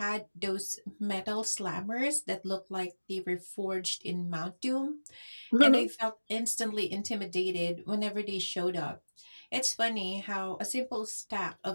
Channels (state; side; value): inverted; both; correlation -1.00